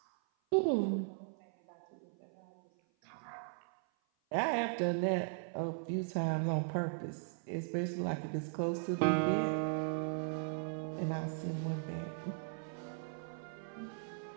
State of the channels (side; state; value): left; silent; 52 dB below the other